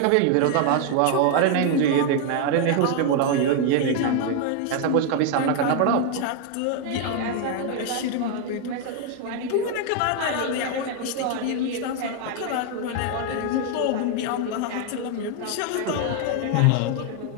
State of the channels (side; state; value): both; different; correlation 0.00